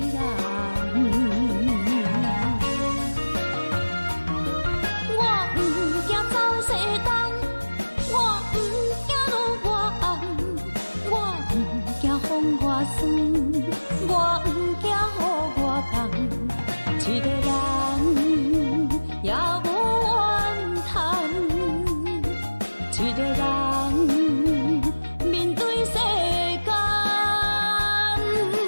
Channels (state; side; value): inverted; both; correlation -1.00